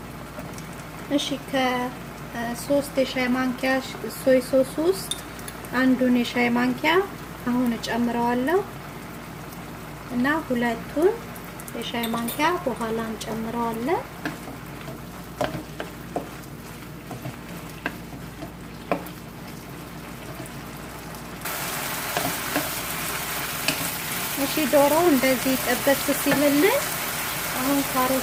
እሺ ከ3 የሻይ ማንኪያ ሶይ ሶስ ውስጥ አንዱን የሻይ ማንኪያ አሁን እጨምረዋለሁ እና 2ቱን የሻይ ማንኪያ በኋላ እንጨምረዋለን። እሺ ዶሮ እንደዚህ ጥብስ ሲልልን አሁን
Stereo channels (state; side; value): identical; both; correlation 1.00